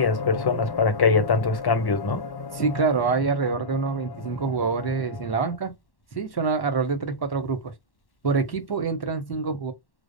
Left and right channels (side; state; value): right; late; 1.1 ms